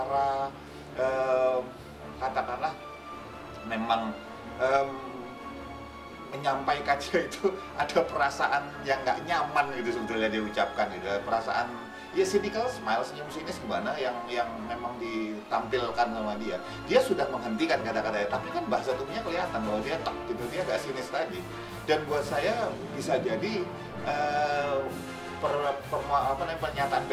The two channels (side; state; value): both; identical; correlation 1.00